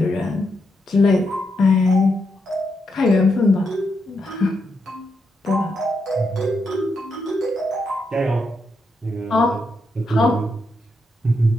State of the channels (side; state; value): both; normal; correlation 0.82